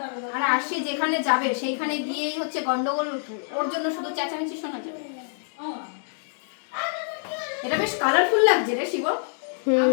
আর আরশি যেখানে যাবে সেইখানে গিয়েই হচ্ছে গন্ডগোল, ওর জন্য শুধু চেঁচামেচি শোনা যাবে। এটা বেশ কালারফুল লাগছে রে শিব।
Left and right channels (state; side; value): silent; right; digital silence